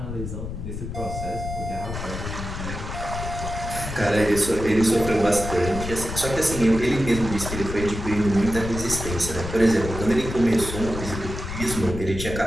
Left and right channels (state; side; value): noise; left; rumble, 7 dB below the sound